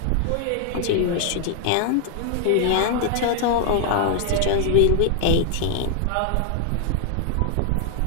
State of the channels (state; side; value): different; both; correlation 0.00